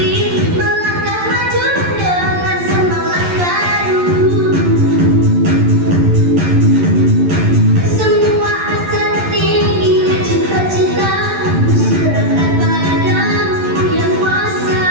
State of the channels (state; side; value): late; left; 11 ms